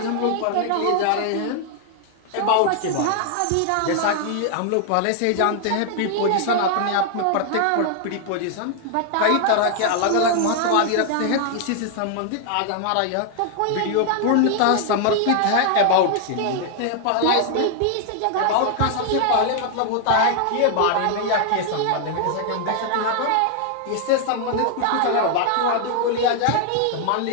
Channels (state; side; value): different; both; correlation 0.00